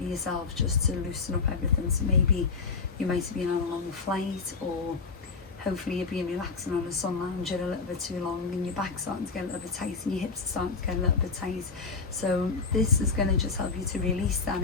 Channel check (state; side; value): quieter; right; 4.7 dB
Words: yourself just to loosen up everything. So maybe you might have been on a long flight, or hopefully you're being relaxing on a sun lounger a little bit too long and your back's starting to get a little bit tight and your hips are starting to get a little bit tight. So this is going to just help you to release that